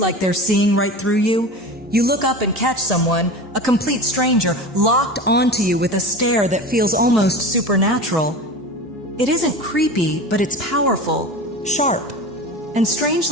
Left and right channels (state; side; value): normal; both; correlation 0.31